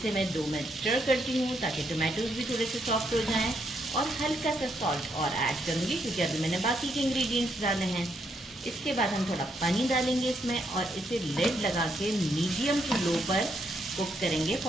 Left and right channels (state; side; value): normal; both; correlation 0.76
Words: मैं 2 मिनट स्टर करती हूँ ताकि टमाटोज भी थोड़े से सॉफ्ट हो जाएं। और हल्का सा सॉल्ट और ऐड करूँगी क्योंकि अभी मैंने बाकी के इंग्रेडिएंट्स डाले हैं। इसके बाद हम थोड़ा पानी डालेंगे इसमें और इसे लिड लगा के मीडियम टू लो पर कुक करेंगे